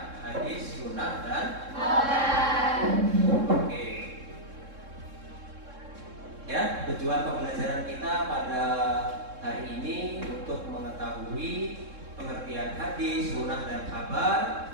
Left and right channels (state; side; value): late; left; 3.7 ms